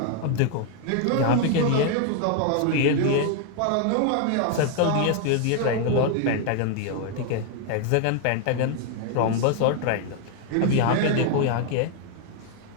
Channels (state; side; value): different; both; correlation 0.00